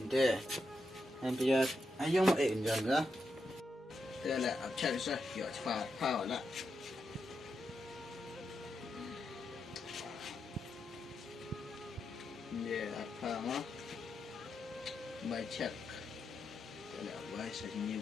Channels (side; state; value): both; normal; correlation 0.85